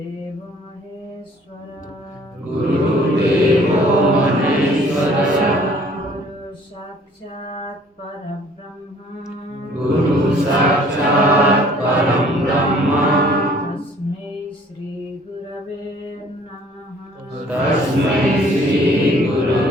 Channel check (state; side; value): normal; both; correlation 0.56